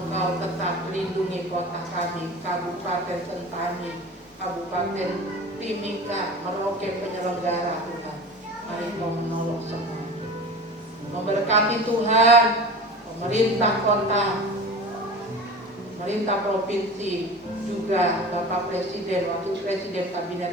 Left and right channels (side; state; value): both; normal; correlation 0.35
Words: tetap lindungi kota kami, Kabupaten Sentani, Kabupaten Timika, Merauke penyelenggara Tuhan. Mari Engkau menolong semua. Memberkati Tuhan, pemerintah kota, pemerintah provinsi, juga Bapak Presiden, Wakil Presiden,